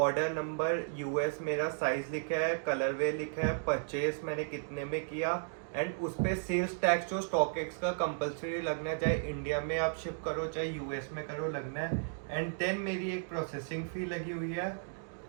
नंबर यूएस मेरा साइज लिखा है, कलरवे लिखा है, परचेज मैंने कितने में किया। एंड उस पर सेल्स टैक्स जो स्टॉकएक्स का कंपलसरी लगना है, चाहे इंडिया में आप शिप करो चाहे यूएस में करो लगना है। एंड देन मेरी एक प्रोसेसिंग फ़ी लगी हुई है।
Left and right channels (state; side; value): silent; left; digital silence